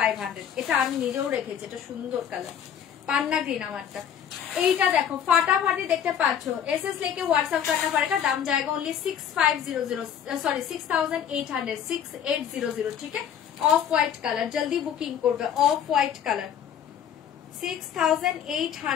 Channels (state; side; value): quieter; right; 8.9 dB